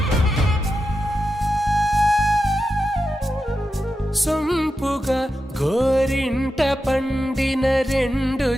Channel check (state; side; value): normal; both; correlation 0.90